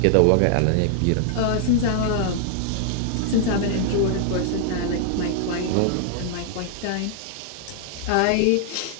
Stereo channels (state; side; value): different; both; correlation -0.01